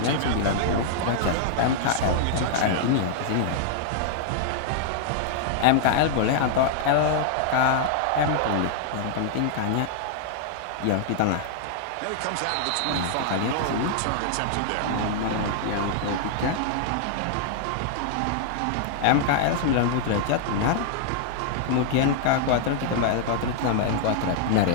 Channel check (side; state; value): both; different; correlation -0.01